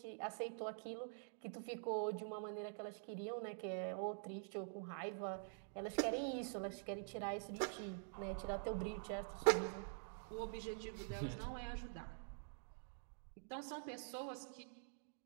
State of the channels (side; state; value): left; silent; digital silence